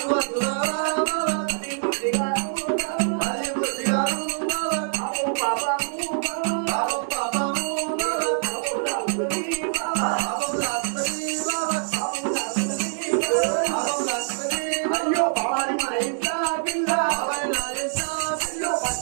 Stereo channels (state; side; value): silent; left; 57 dB below the other